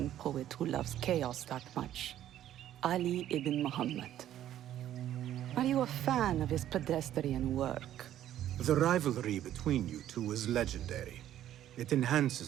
poet who loves chaos that much. Ali ibn Muhammad. Are you a fan of his pedestrian work? The rivalry between you two is legendary. It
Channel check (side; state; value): left; quieter; 11.9 dB